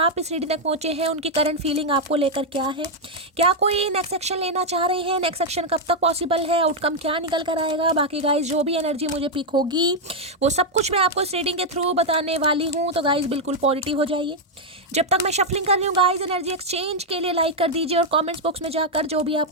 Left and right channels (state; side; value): normal; both; correlation -0.01